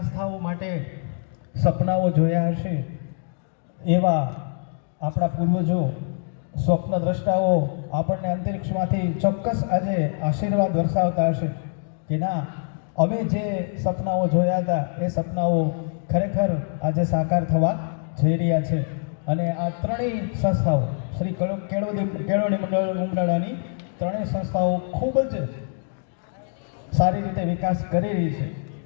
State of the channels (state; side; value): silent; right; digital silence